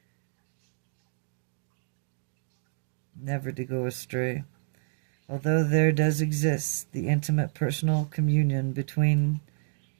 never to go astray. Although there does exist the intimate personal communion between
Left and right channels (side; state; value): left; silent; digital silence